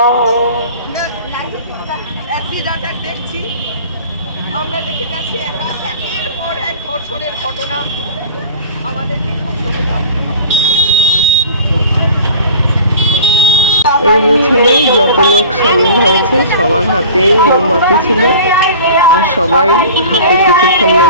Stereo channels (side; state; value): both; inverted; correlation -0.42